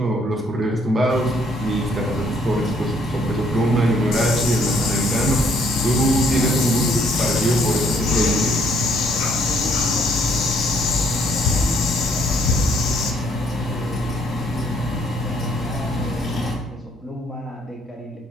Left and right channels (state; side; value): normal; both; correlation 0.66